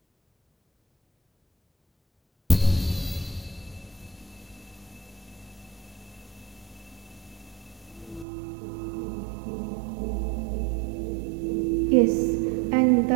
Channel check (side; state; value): left; drops out; at 8.2 s